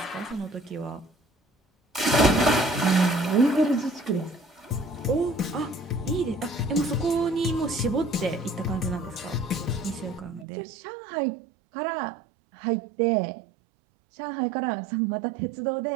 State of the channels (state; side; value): drops out; left; at 10.5 s